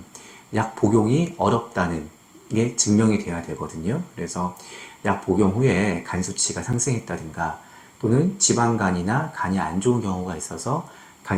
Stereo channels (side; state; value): both; identical; correlation 1.00